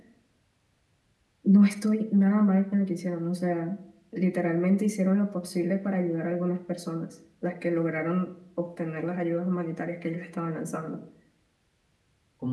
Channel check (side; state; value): both; identical; correlation 1.00